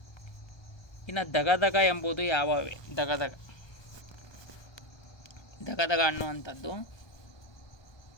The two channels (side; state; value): right; late; 1.2 ms